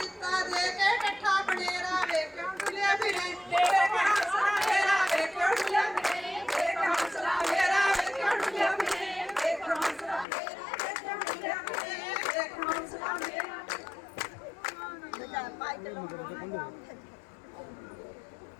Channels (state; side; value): drops out; right; at 10.2 s